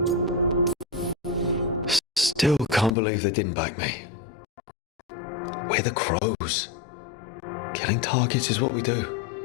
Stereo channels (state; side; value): drops out; right; at 3.0 s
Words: Still can't believe they didn't back me. We're the Crows. Killing targets is what we do.